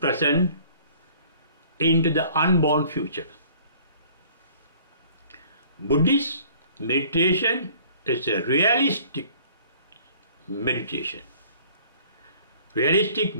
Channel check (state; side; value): inverted; both; correlation -0.53